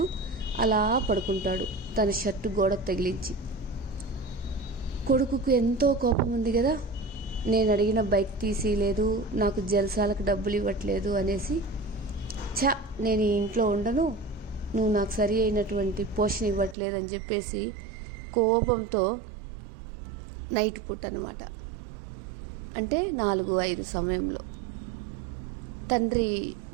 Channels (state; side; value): drops out; left; at 16.8 s